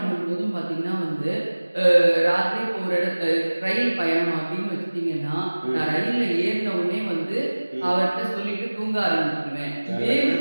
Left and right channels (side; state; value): both; inverted; correlation -1.00